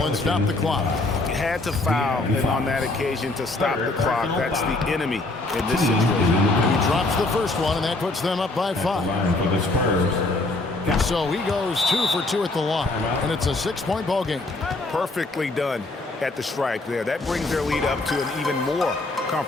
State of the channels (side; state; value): right; quieter; 3.0 dB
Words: and stop the clock. You had to foul and on that occasion to stop the clock. That's the enemy in this situation. He drops the first one, and that puts them up by 5. Line for the Spurs. So he goes 2 for 2 at the line, and it's a 6-point ball game. Perfectly done at the stripe there. That brings their lead up to an even more